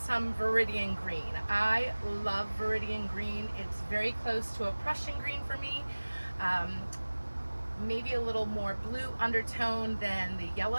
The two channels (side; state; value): both; inverted; correlation -1.00